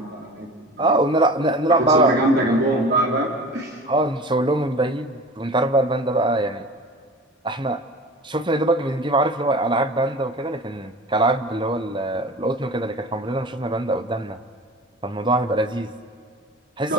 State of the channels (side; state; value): both; normal; correlation 0.37